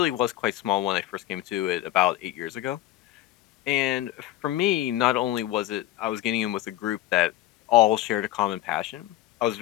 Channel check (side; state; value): right; quieter; 14.6 dB